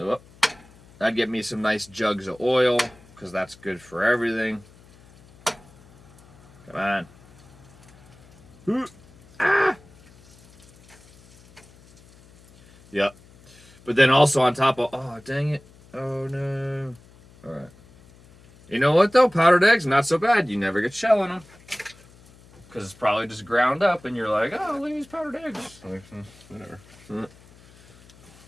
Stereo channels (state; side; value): noise; left; hum, 26 dB below the sound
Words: I'd get me some nice jugs of oil, because that's good for everything. Come on. Ah! Yep. But then also on top of, oh, dang it. Oh, no. All right. You know what, though? Powdered eggs, not so bad. You never get shell in them. Because it's probably just ground up, and you're like, oh, look at these powdered eggs. Like, whatever.